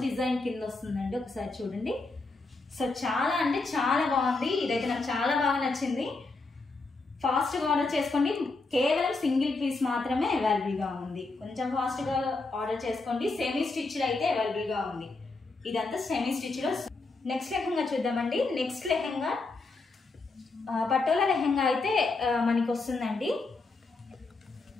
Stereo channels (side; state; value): right; quieter; 3.6 dB